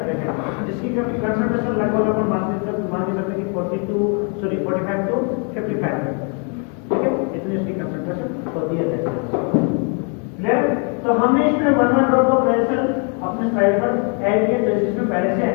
हैं जिसकी कंसंट्रेशन लगभग अपन मान के सकते हैं कि 45 to 55 है, ठीक है। इतनी इसकी कंसंट्रेशन होती है। क्लियर? तो हमने इसमें 1 ड्रॉप ऑफ रेड सेल अपने स्लाइड पर ऐड किया, जैसे इसमें पहले से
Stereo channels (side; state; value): right; quieter; 38.0 dB